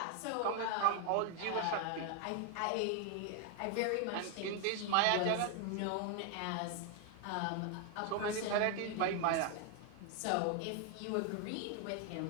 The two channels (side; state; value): both; different; correlation 0.01